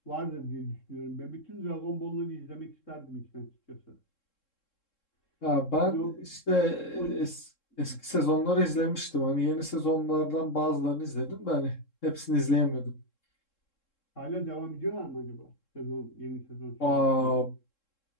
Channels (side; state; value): right; late; 3.7 ms